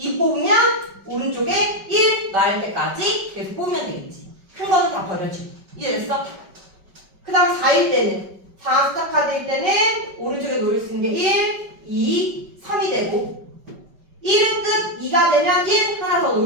뽑으면 오른쪽에 1 나올 때까지 계속 뽑으면 되겠지. 큰 거는 다 버려지고. 이해됐어? 그 다음 4일 때는 4 숫자 카드일 때는 오른쪽에 놓을 수 있는 게 1, 2, 3이 되고 1은 끝, 2가 되면 1 하나 더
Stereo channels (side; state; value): left; late; 5.3 ms